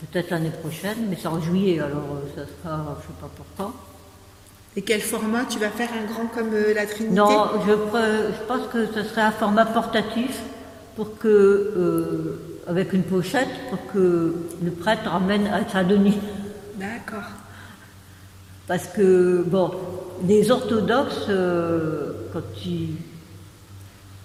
l'année prochaine, mais c'est en juillet, alors ça sera, je ne sais pas pourquoi. Et quel format? Tu vas faire un grand comme la Trinité? Non, je pense que ce serait un format portatif pour que, avec une pochette, pour que le prêtre emmène à Saint-Denis. D'accord. Parce que, bon, les orthodoxes, quand ils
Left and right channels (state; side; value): identical; both; correlation 1.00